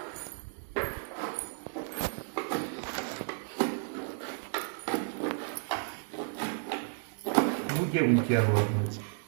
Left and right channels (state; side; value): silent; left; 56 dB below the other